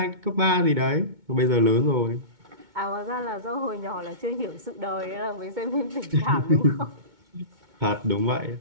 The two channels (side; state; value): left; late; 2.2 ms